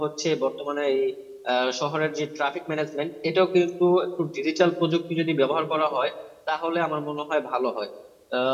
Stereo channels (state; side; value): identical; both; correlation 1.00